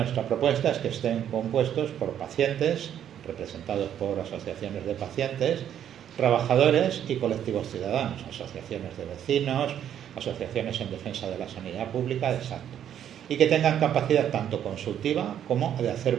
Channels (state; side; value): quieter; left; 9.9 dB